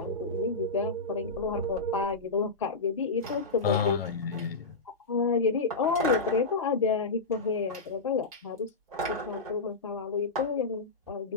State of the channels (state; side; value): quieter; right; 3.8 dB